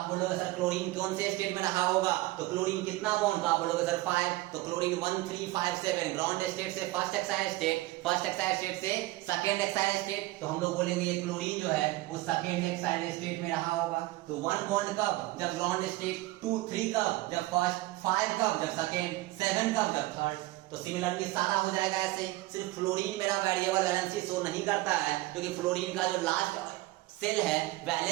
बोलोगे सर क्लोरीन कौन से स्टेट में रहा होगा, तो क्लोरीन कितना बॉन्ड, तो आप बोलोगे सर 5, तो क्लोरीन 1 3 5 7, ग्राउंड स्टेट से first Exide state, first Exide state से सेकंड एक्साइड स्टेट, तो हम लोग बोलेंगे ये क्लोरीन जो है वो सेकंड एक्साइड स्टेट में रहा होगा। तो 1 बॉन्ड कब, जब ग्राउंड स्टेट, 2 3 कब, जब फर्स्ट, 5 कब, जब सेकंड, 7 कब, जब थर्ड। तो सिमिलरली सारा हो जाएगा ऐसे। सिर्फ फ्लोरीन मेरा वेरिएबल वैलेंसी शो नहीं करता है, क्योंकि फ्लोरीन का जो लास्ट सेल है,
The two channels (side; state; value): left; quieter; 19.0 dB